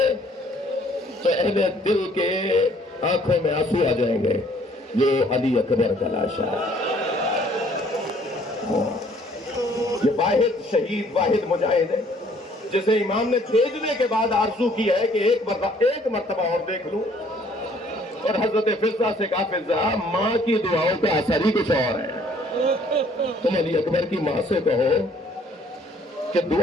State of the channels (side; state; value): both; normal; correlation 0.60